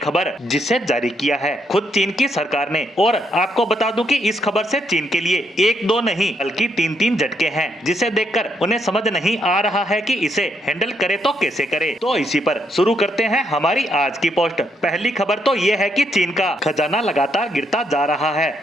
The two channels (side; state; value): both; normal; correlation 0.76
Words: जिसे जारी किया है खुद चीन की सरकार ने। और आपको बता दूं कि इस खबर से चीन के लिए एक दो नहीं बल्कि तीन तीन झटके हैं, जिसे देखकर उन्हें समझ नहीं आ रहा है कि इसे हैंडल करे तो कैसे करे। तो इसी पर शुरू करते हैं हमारी आज की पोस्ट। पहली खबर तो ये है कि चीन का खजाना लगातार गिरता जा रहा है।